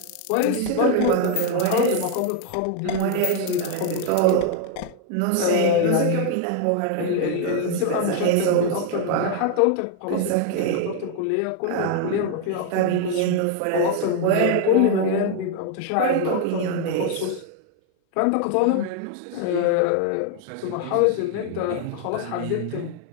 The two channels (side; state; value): both; different; correlation 0.00